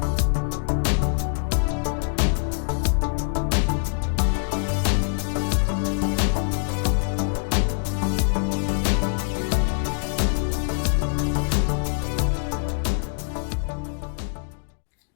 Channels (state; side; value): silent; right; 62 dB below the other